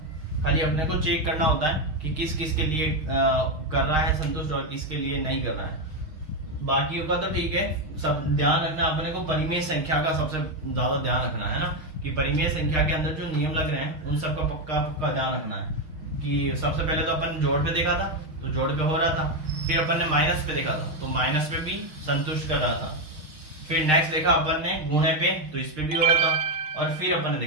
खाली अपने को चेक करना होता है कि किस किस के लिए कर रहा है संतुष्ट और किसके लिए नहीं कर रहा है। बाकियों का तो ठीक है, सब ध्यान रखना अपने को परिमेय संख्या का सबसे ज्यादा ध्यान रखना है ना, कि परिमेय संख्या के अंदर जो नियम लग रहे हैं उन सब का पक्का ध्यान रखना है। कि सबसे पहले तो अपन जोड़ पे देखा था, तो जोड़ पे हो रहा था, फिर अपन ने माइनस पे देखा था तो माइनस पे भी संतुष्ट कर रहा था। फिर नेक्स्ट देखा अपन ने गुणे पे तो इस पे भी हो रहा था, और फिर अपन ने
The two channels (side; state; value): left; late; 6.5 ms